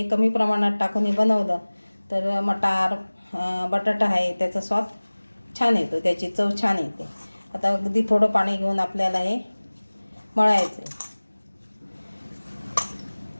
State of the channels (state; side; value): inverted; both; correlation -1.00